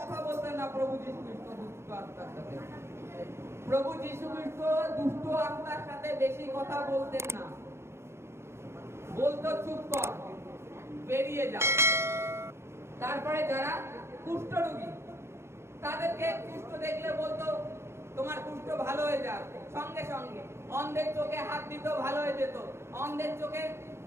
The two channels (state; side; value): late; left; 0.13 ms